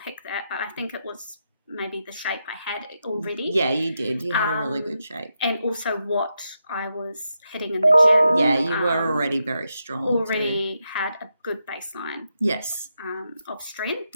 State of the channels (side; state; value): both; inverted; correlation -0.85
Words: that, but I think it was maybe the shape I had already. Yeah, you did. You had a really good shape. And also what I was hitting in the gym. Yeah, you were already very strong. Already had a good baseline. Yes. Of strength,